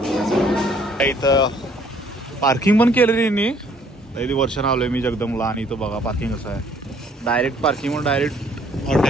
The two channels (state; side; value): normal; both; correlation 0.61